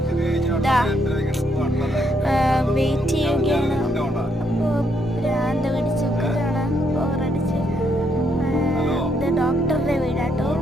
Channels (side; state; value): both; normal; correlation 0.75